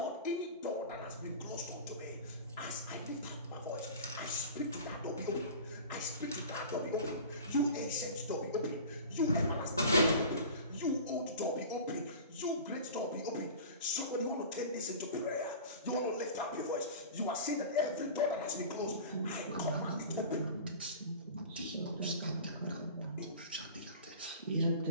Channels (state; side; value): inverted; both; correlation -0.37